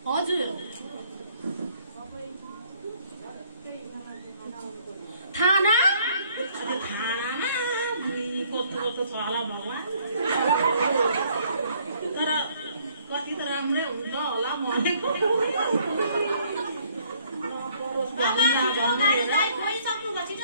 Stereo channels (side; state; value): both; inverted; correlation -0.63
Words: हजुर थाना थानामा कस्तो कस्तो छ होला भगवान्। तर कति त राम्रै हुन्छ होला भनेको।